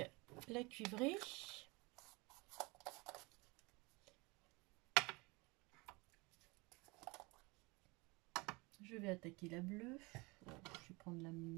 la cuivrée. Je vais attaquer la bleue. Je vais prendre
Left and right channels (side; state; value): left; quieter; 26.0 dB